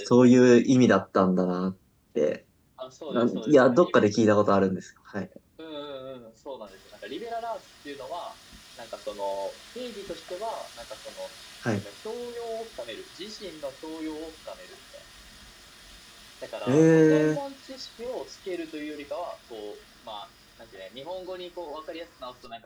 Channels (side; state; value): both; identical; correlation 1.00